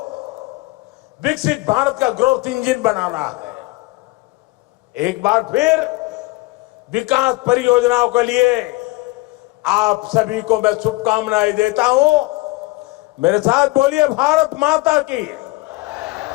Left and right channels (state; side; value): quieter; right; 21.7 dB